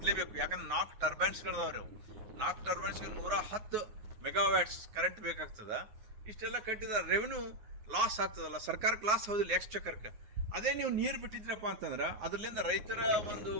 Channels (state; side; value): late; left; 9.6 ms